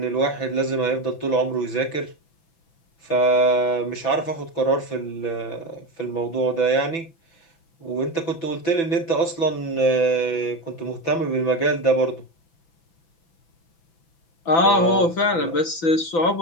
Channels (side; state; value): right; late; 6.0 ms